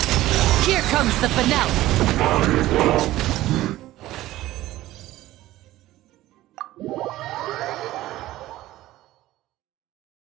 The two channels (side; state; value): left; quieter; 15.9 dB